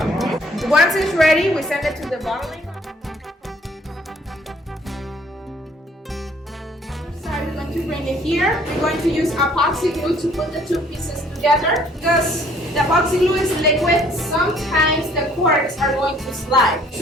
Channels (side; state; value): both; normal; correlation 0.59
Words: Once it's ready, we send it to the bottling. We're going to bring it here. We're going to use epoxy glue to put the two pieces together. Because the epoxy glue is liquid, sometimes the corks are going to slide.